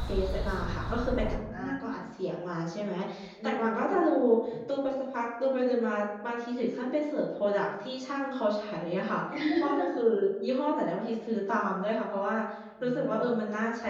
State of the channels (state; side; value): identical; both; correlation 1.00